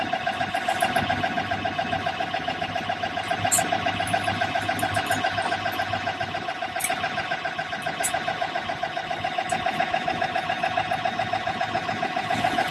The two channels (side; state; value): both; identical; correlation 1.00